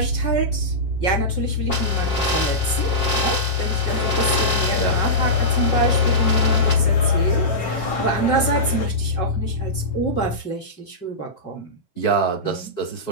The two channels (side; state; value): right; late; 7.5 ms